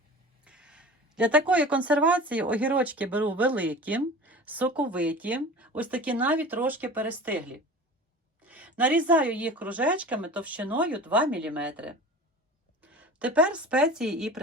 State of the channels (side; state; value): both; normal; correlation 0.37